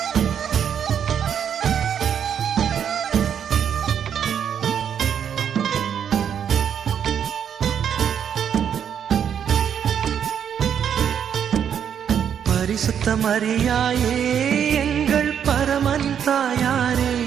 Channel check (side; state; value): left; quieter; 8.4 dB